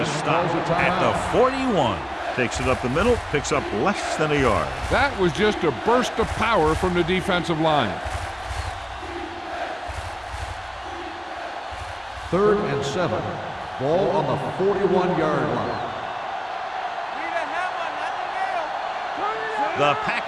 stop at the 41. Takes it up the middle, picks up less than a yard. That was just a burst of power from the defensive line. 3rd and 7. Ball on the 41-yard line. The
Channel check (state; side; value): identical; both; correlation 1.00